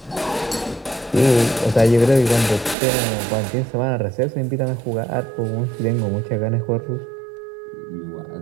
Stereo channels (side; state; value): left; drops out; at 2.8 s